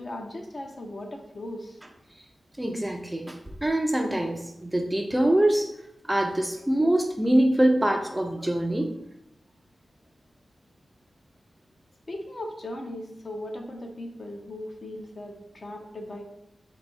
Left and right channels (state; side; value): normal; both; correlation 0.97